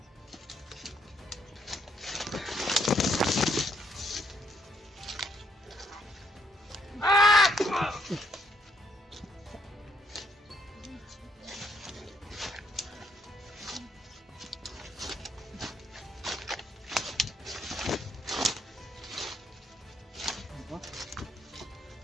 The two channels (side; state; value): both; normal; correlation 0.71